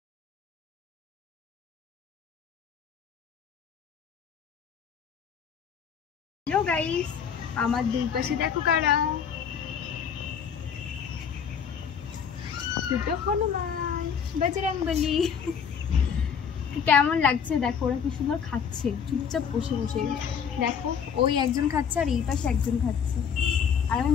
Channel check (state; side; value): quieter; right; 7.2 dB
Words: হ্যালো গাইস, আমার দুই পাশে দেখো কারা, দুটো হনুমান বজরংবলী। কেমন লাগছে দেখো, ওরা কি সুন্দর খাচ্ছে চুপচাপ বসে বসে। দেখো ওই একজন খাচ্ছে আর এই পাশে একজন খাচ্ছে, আর আমি